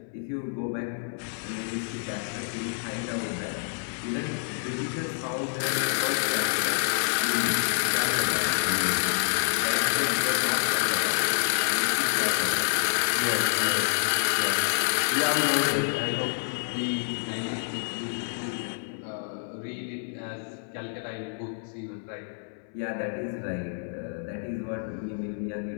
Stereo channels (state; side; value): silent; right; 59 dB below the other